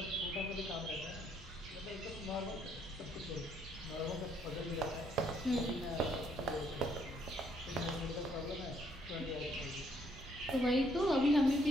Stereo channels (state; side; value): normal; both; correlation 0.69